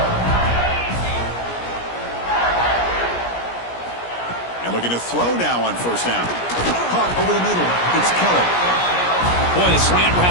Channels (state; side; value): late; right; 17 ms